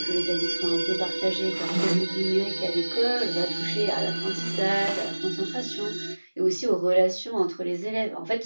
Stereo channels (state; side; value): inverted; both; correlation -1.00